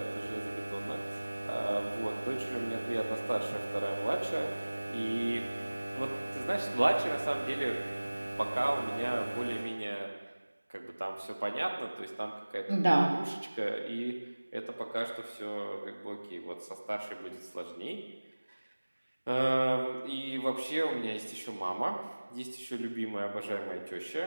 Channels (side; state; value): both; inverted; correlation -1.00